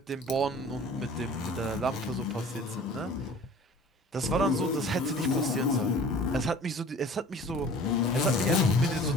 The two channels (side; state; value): both; normal; correlation 0.45